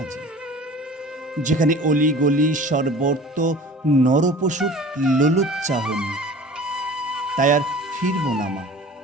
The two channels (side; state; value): both; normal; correlation 0.42